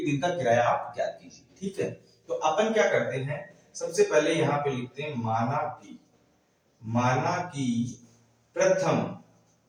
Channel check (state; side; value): identical; both; correlation 1.00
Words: दिन का किराया आप ज्ञात कीजिए, ठीक है। तो अपन क्या करते हैं, सबसे पहले यहाँ पे लिखते हैं माना कि प्रथम